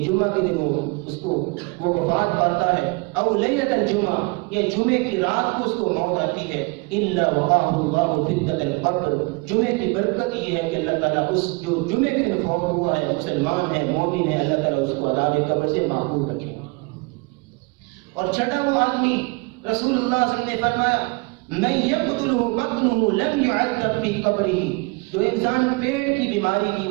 جمعہ کے دن وہ وفات پاتا ہے, او لیلۃ الجمعہ, یا جمعے کی رات کو اس کو موت آتی ہے, الا وقاہ اللہ فتنۃ القبر, جمعے کی برکت یہ ہے کہ اللہ تعالیٰ اس جو جمعے کے دن فوت ہوا ہے, مسلمان ہے, مومن ہے, اللہ تعالیٰ اس کو عذاب قبر سے محفوظ رکھے. اور چھٹا وہ آدمی, رسول اللہ صلی اللہ علیہ وسلم نے فرمایا من یقتلہ بطنہ لم یعذب فی قبرہ, جو انسان پیٹ کی بیماری کی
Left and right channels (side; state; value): left; quieter; 28.2 dB